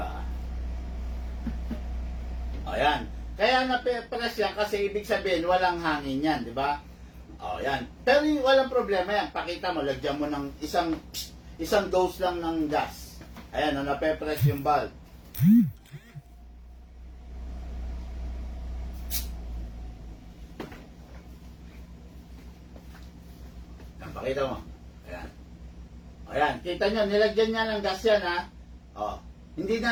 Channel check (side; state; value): both; identical; correlation 1.00